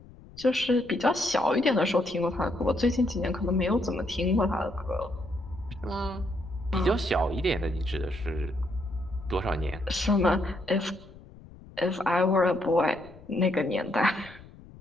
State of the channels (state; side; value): noise; left; rumble, 20 dB below the sound